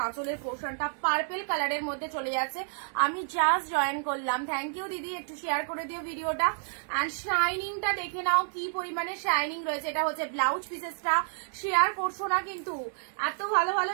আঁচলের পোর্শনটা, পার্পেল কালারের মধ্যে চলে যাচ্ছে। আমি জাস্ট জয়েন করলাম, থ্যাংক ইউ দিদি, একটু শেয়ার করে দিও ভিডিওটা। অ্যান্ড শাইনিংটা দেখে নাও কি পরিমাণে শাইনিং রয়েছে। এটা হচ্ছে ব্লাউজ পিসেসটা, শেয়ার করছো না কিন্তু। এত ভালো ভালো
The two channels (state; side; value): silent; left; digital silence